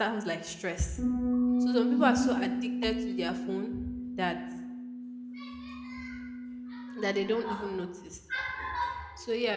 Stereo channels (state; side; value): identical; both; correlation 1.00